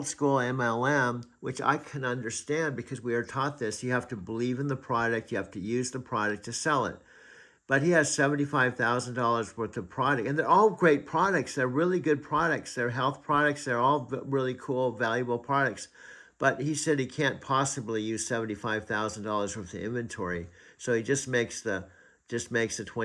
school MLM, which I can understand because we are taught this, you have to believe in the product, you have to use the product to sell it. But he has $75,000 worth of product, and they're all great products. They're really good products. They're health products. They're all really cool, valuable products. But he said he can't possibly use $75,000 worth of inventory, so he just makes the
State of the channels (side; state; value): both; identical; correlation 1.00